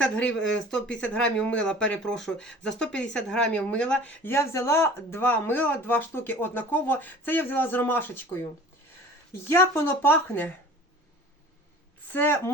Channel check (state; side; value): normal; both; correlation 0.44